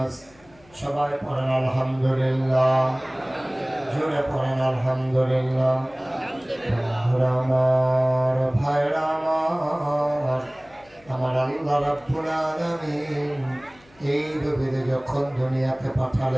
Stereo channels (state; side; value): noise; left; hum, 28 dB below the sound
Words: সবাই পড়েন আলহামদুলিল্লাহ, জোরে পড়েন আলহামদুলিল্লাহ। আমার ভাইরা আমার আল্লাহ রাব্বুল আলামিন এই নবীকে যখন দুনিয়াতে